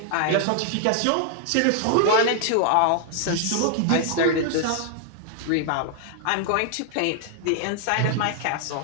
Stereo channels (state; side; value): different; both; correlation 0.00